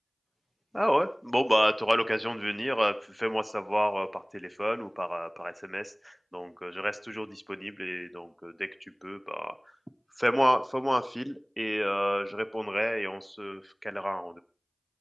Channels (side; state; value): both; identical; correlation 1.00